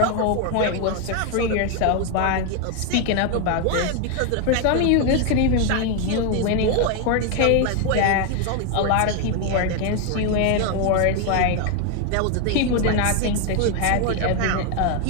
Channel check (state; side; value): different; both; correlation 0.01